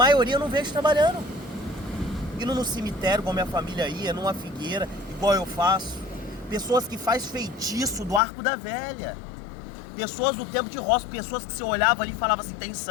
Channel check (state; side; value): drops out; right; at 8.2 s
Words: eu não vejo trabalhando. Indo no cemitério, igual minha família ia, numa figueira, igual eu faço. Pessoas que faz feitiço do Arco da Velha. Pessoas do tempo de roça, pessoas que você olhava ali e falava assim, tem